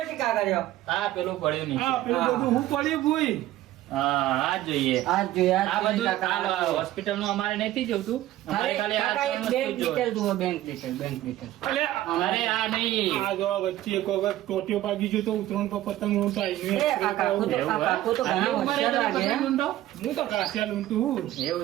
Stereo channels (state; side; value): quieter; left; 14.6 dB